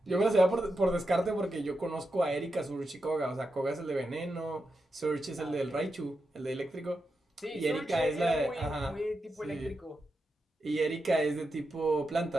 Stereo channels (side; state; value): both; normal; correlation 0.87